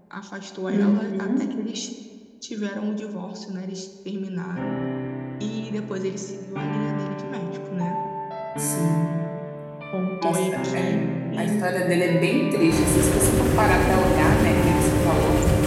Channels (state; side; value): identical; both; correlation 1.00